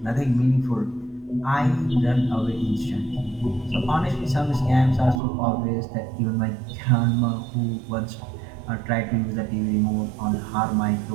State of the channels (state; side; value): drops out; left; at 5.2 s